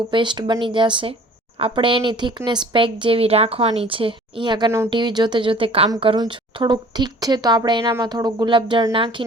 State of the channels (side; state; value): both; normal; correlation 0.49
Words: પેસ્ટ બની જશે. આપણે એની થિકનેસ પેક જેવી રાખવાની છે. અહીંયા કને હું ટીવી જોતે કામ કરું છું. થોડુંક થીક છે તો આપણે એનામાં થોડું ગુલાબજળ